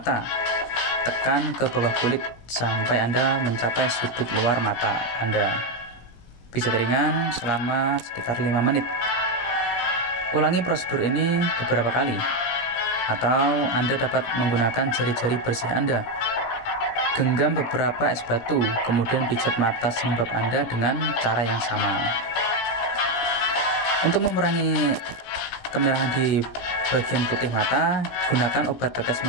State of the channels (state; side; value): late; right; 17 ms